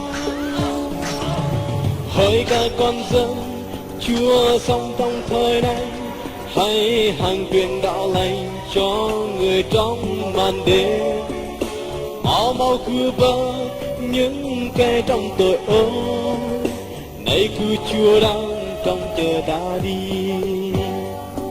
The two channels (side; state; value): both; identical; correlation 1.00